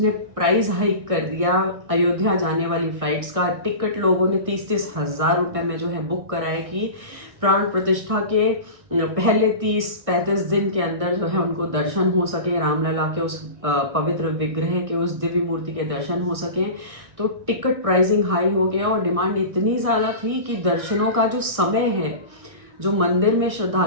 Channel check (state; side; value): late; left; 1.6 ms